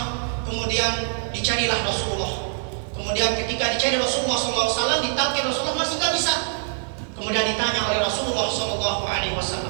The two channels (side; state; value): left; silent; digital silence